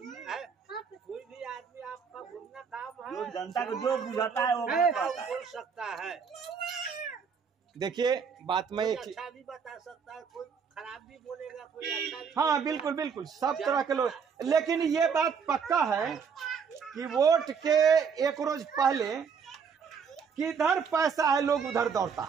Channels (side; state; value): left; quieter; 6.3 dB